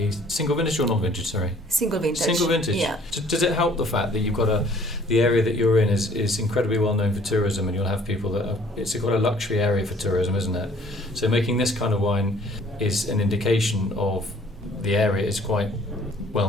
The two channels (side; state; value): both; normal; correlation 0.57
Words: single vintage or non-vintage, sorry? Single vintage. Single vintage? Yeah. Does it help the fact that you've got the area that you're in is incredibly well known for tourism, and you'll have people that it's quite a luxury area for tourism, isn't it? So making this kind of wine is an indication of the area is quite